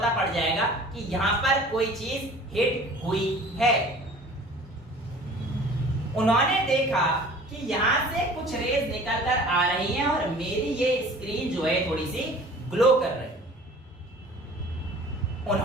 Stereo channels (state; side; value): normal; both; correlation 0.46